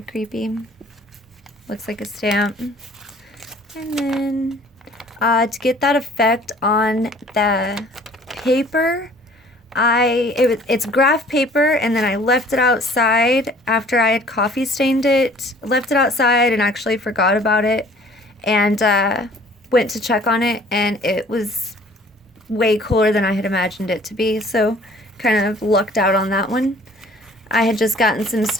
creepy. Looks like a stamp. And then to get that effect on the paper, it's graph paper, and then I left it outside after I had coffee stained it. Left it outside and actually forgot about it, and went to check on it, and it was way cooler than I had imagined it to be, so kind of lucked out on that one. I had just gotten some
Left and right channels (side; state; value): both; normal; correlation 0.53